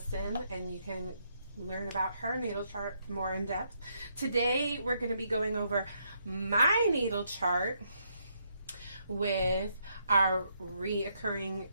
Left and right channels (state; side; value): inverted; both; correlation -0.75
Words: and you can learn about her natal chart more in depth. Today we're going to be going over my natal chart with our reoccurring